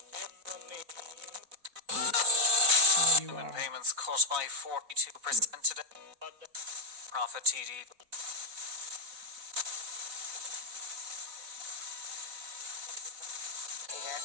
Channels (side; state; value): left; late; 4.0 ms